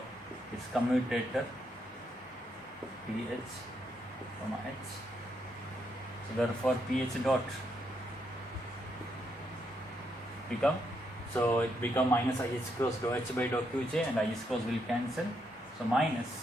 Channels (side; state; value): both; normal; correlation 0.78